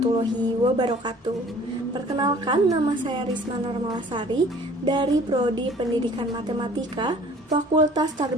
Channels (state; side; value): normal; both; correlation 0.51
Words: wabarakatuh. Perkenalkan, nama saya Risma Normalasari dari Prodi Pendidikan Matematika, Fakultas